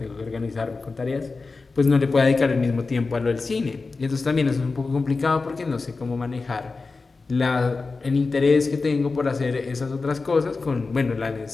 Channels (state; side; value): quieter; right; 4.0 dB